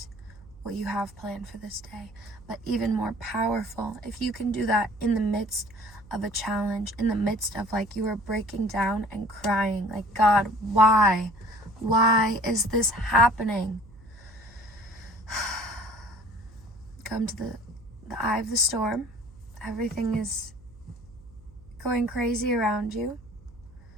what you have planned for this day. But even more powerful, if you can do that in the midst of a challenge, in the midst of like you are breaking down and crying, like, God, why? Why is this happening? Come to the eye of the storm. Everything is going crazy around you.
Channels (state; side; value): noise; right; hum, 22 dB below the sound